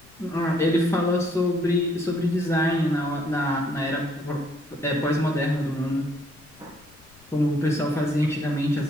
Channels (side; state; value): left; noise; rumble, 27 dB below the sound